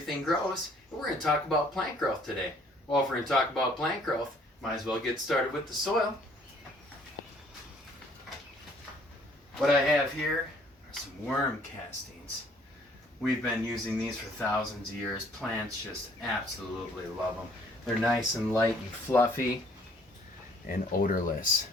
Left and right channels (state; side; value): normal; both; correlation 0.60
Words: Grows, and we're going to talk about plant growth today. Well, if we're going to talk about plant growth, might as well get started with the soil. What I have here are some worm castings. We've been using these for thousands of years. Plants just absolutely love them. They're nice and light and fluffy and odorless.